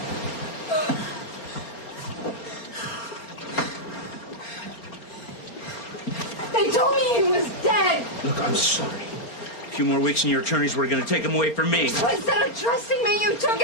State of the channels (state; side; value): late; right; 4.3 ms